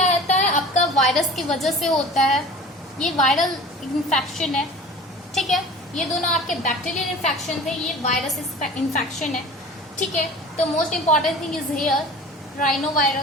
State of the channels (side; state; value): both; normal; correlation 0.41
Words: रहता है, आपका वायरस की वजह से होता है, ये वायरल इन्फेक्शन है, ठीक है। ये दोनों आपके बैक्टीरियल इन्फेक्शन थे, ये वायरस इन्फेक्शन है, ठीक है। तो most important thing is here rhino